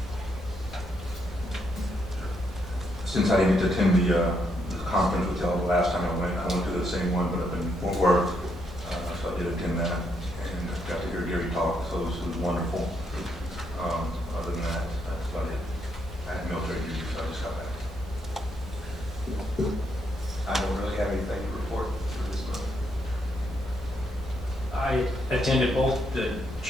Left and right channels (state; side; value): normal; both; correlation 0.77